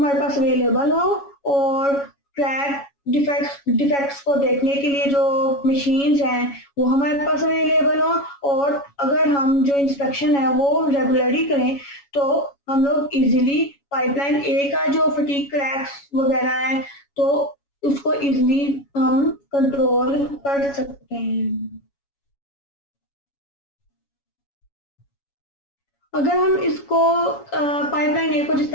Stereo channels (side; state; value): right; late; 7.2 ms